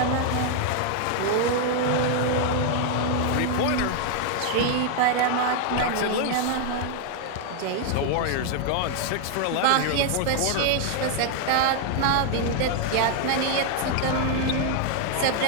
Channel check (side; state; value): both; different; correlation 0.00